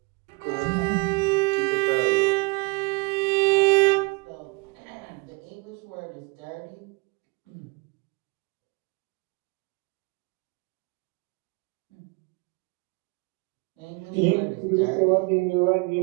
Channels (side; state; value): left; quieter; 29.1 dB